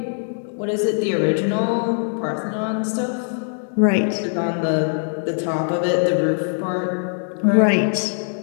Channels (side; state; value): right; silent; digital silence